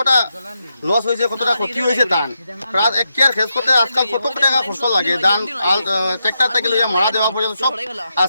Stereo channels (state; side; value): inverted; both; correlation -0.84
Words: লস হয়েছে কতটা ক্ষতি হয়েছে তান প্রায় 1 কেয়ার খেস করতে আজকাল কত টাকা খরচ লাগে দান ট্রাক্টর থেকে লইয়া মারা দেওয়া পর্যন্ত সব